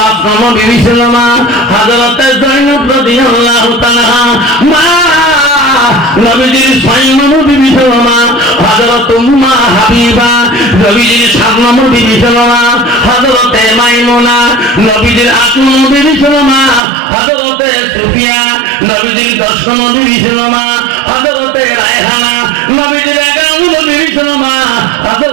নম্বর বিবি ছিল মা হযরতে যায়েনব রাদিয়াল্লাহু তাআলা। মা নবীজির ৬ নম্বর বিবি ছিল মা হযরত উম্মে হাবিবা। নবীজির ৭ নম্বর বিবি ছিল মা হযরতে মাইমুনা। নবীজির ৮ নম্বর বিবি ছিল মা হযরতে সুফিয়া। নবীজির ১০ নম্বর বিবি ছিল মা হযরতে রায়হানা। নবীজির ১১ নম্বর বিবি ছিল মা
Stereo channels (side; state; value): left; drops out; at 16.8 s